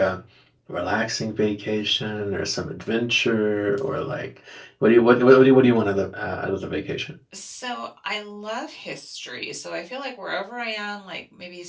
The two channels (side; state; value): both; identical; correlation 1.00